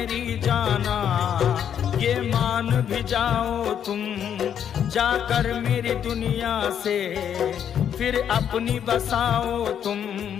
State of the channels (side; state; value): right; quieter; 8.9 dB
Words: जाना, ये मान भी जाओ तुम, जाकर मेरी दुनिया से फिर अपनी बसाओ तुम।